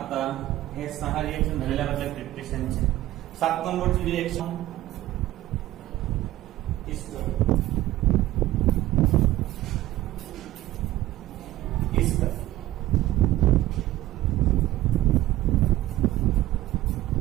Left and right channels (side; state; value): left; quieter; 15.4 dB